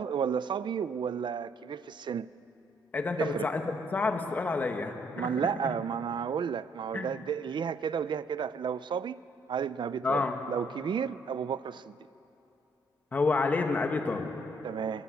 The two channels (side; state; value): both; normal; correlation 0.67